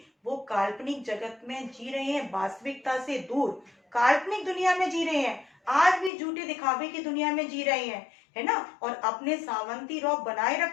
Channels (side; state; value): right; drops out; at 6.1 s